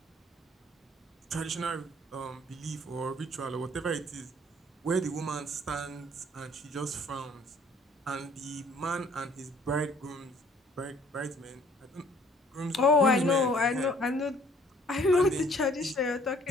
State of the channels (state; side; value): normal; both; correlation 0.59